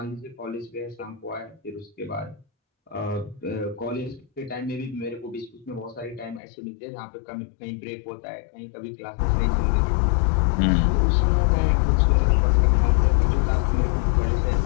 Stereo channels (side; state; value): right; drops out; at 6.4 s